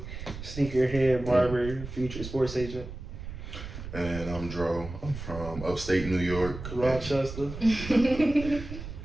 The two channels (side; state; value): right; noise; rumble, 10 dB below the sound